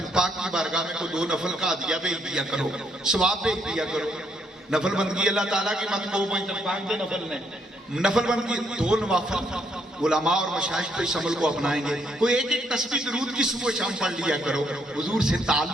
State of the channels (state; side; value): normal; both; correlation 0.73